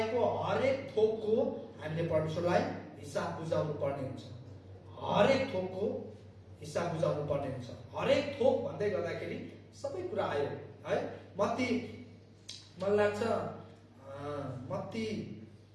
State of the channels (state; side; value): identical; both; correlation 1.00